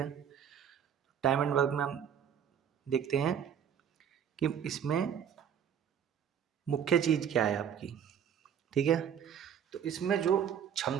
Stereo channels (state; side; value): quieter; left; 8.5 dB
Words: टाइम एंड वर्क में हम देखते हैं कि इसमें मुख्य चीज़ क्या है आपकी। ठीक है, तो इसमें जो